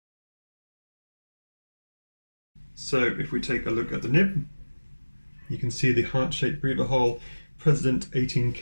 So if we take a look at the nib, you can see the heart-shaped breather hole, President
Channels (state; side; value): inverted; both; correlation -1.00